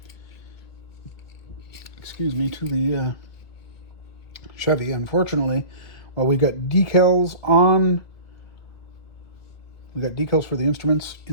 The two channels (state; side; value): late; right; 1.8 ms